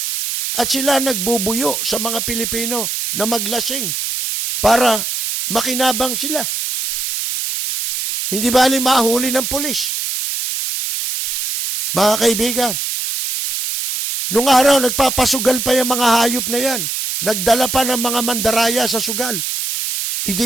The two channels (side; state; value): right; noise; hiss, 2 dB below the sound